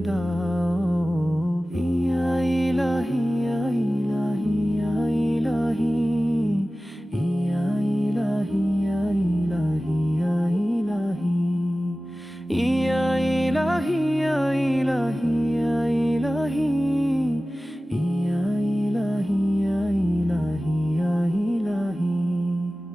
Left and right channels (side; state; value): both; normal; correlation 0.96